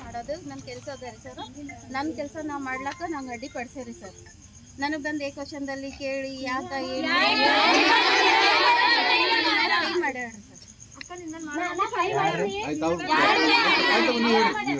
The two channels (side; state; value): both; identical; correlation 1.00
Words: ಮಾಡೋದು ನನ್ನ ಕೆಲಸ ಅದ ರೀ ಸರ್. ನನ್ನ ಕೆಲಸ ನಾವು ಮಾಡ್ಲಾಕ ನಂಗೆ ಅಡ್ಡಿಪಡಿಸ್ರಿ ಸರ್. ನನಗೆ ಬಂದು ಏಕವಚನದಲ್ಲಿ ಕೇಳಿ ಯಾಕ ಏನು ಮಾಡ್ಯಾರ